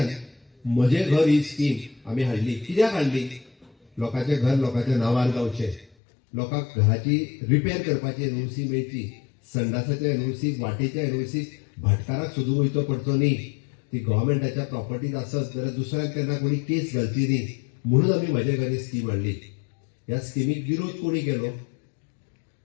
म्हजे घर ही स्कीम आमी हाडली. कित्याक हाडली? लोकांचे घर लोकांच्या नांवार जावचे, लोकांक घराची रिपेर करपाची एनओसी मेळची, संडासाच्या एनओसीक, वाटेच्या एनओसीक भाटकाराक सोदून वयचो पडचो न्ही. ती गव्हर्नमेंटाच्या प्रॉपर्टीज आसत जाल्यार दुसऱ्याक तेन्ना कोणी केस घालची न्ही. म्हणून आमी म्हजे घर ही स्कीम हाडली. ह्या स्किमीक विरोध कोणी केलो?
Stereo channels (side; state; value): right; drops out; at 5.9 s